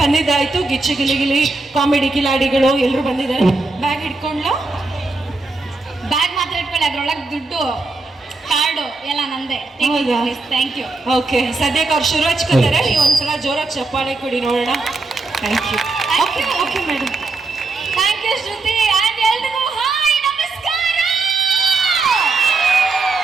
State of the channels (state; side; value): quieter; left; 3.5 dB